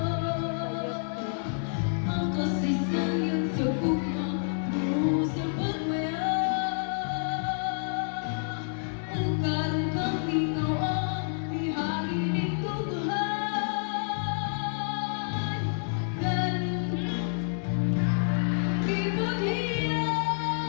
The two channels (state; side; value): silent; right; digital silence